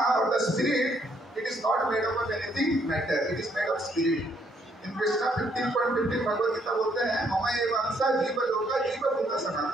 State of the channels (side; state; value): both; normal; correlation 0.70